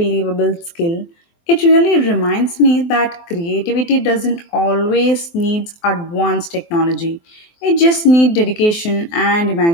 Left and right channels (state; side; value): late; right; 23 ms